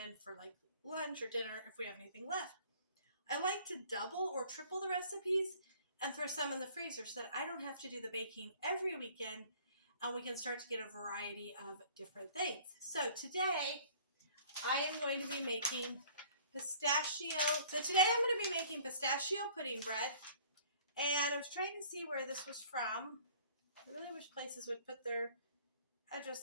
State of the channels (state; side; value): inverted; both; correlation -0.52